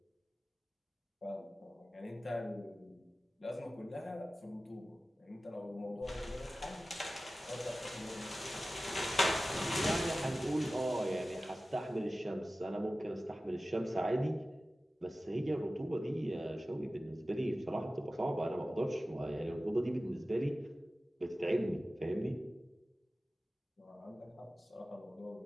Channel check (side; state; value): both; normal; correlation 0.96